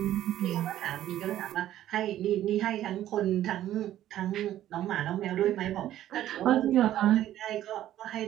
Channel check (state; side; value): quieter; left; 12.7 dB